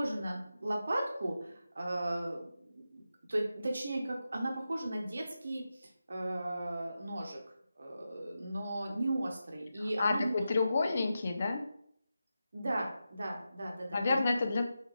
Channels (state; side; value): inverted; both; correlation -0.90